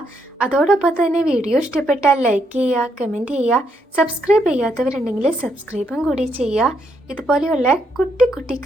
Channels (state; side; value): normal; both; correlation 0.76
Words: അതോടൊപ്പം തന്നെ വീഡിയോ ഇഷ്ടപ്പെട്ടാൽ ലൈക്ക് ചെയ്യുക, കമൻറ്റ് ചെയ്യുക. സബ്സ്ക്രൈബ് ചെയ്യാത്തവരുണ്ടെങ്കിൽ സബ്സ്ക്രൈബും കൂടി ചെയ്യുക. ഇതുപോലെയുള്ള കുട്ടി കുട്ടി